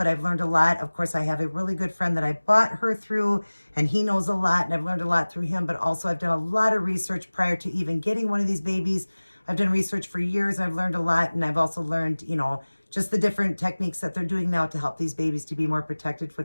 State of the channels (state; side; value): inverted; both; correlation -1.00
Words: I've learned a lot. Of course, I have a really good friend that I bought her through, and he knows a lot, and I've learned a lot through him. But also, I've done a lot of research prior to even getting one of these babies. I've done research for years. I've learned a lot, and I've also learned, you know, just the different techniques that they're doing now to help these babies to be more protected